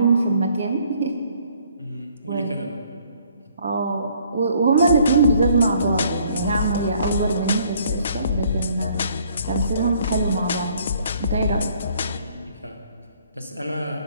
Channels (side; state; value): both; inverted; correlation -0.62